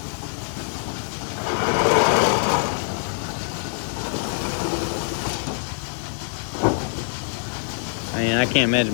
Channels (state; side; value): silent; right; digital silence